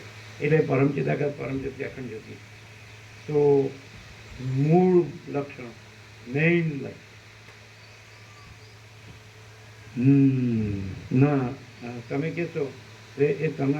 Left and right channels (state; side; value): identical; both; correlation 1.00